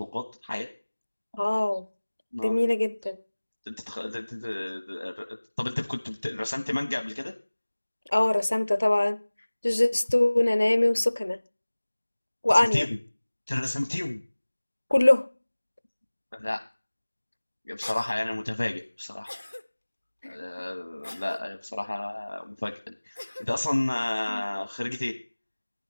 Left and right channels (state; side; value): inverted; both; correlation -1.00